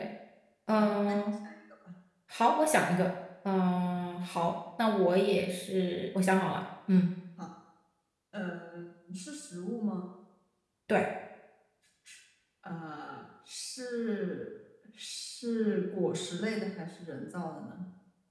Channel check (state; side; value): identical; both; correlation 1.00